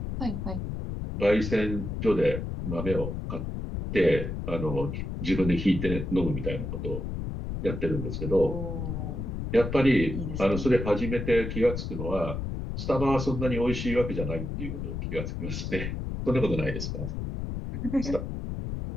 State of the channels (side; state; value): left; noise; rumble, 4 dB below the sound